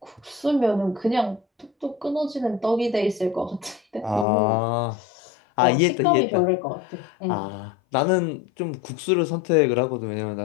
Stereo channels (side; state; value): right; drops out; at 4.2 s